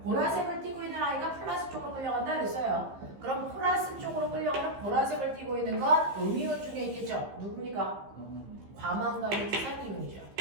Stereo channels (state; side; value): late; left; 15 ms